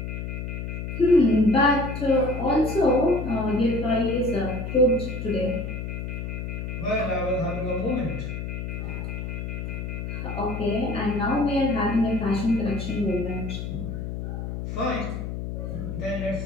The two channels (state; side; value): noise; left; hum, 5 dB below the sound